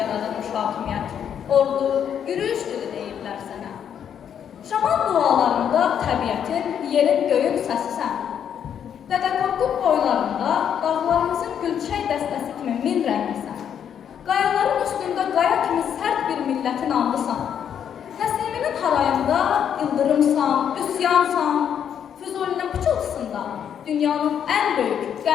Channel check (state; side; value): quieter; right; 8.7 dB